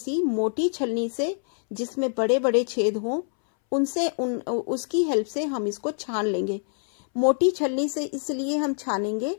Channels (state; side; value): silent; right; 61 dB below the other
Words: मोटी छलनी से जिसमें बड़े बड़े छेद हों उनसे उसकी हेल्प से हम इसको छान लेंगे। मोटी छलनी से इसलिए हम छानेंगे